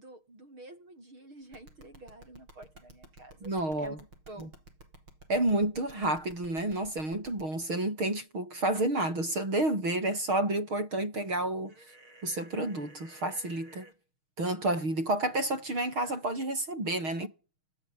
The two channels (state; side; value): late; left; 6.4 ms